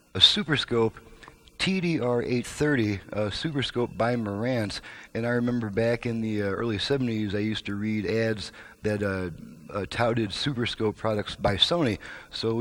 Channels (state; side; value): identical; both; correlation 1.00